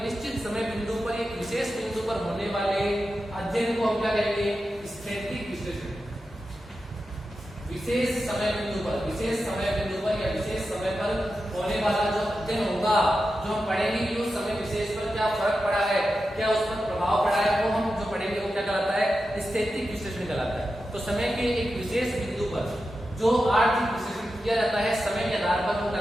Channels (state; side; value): normal; both; correlation 0.91